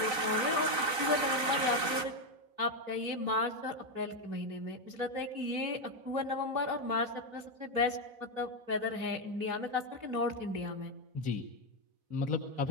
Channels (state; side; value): late; left; 3.9 ms